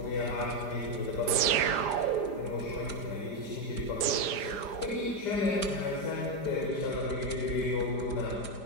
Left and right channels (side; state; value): right; late; 5.0 ms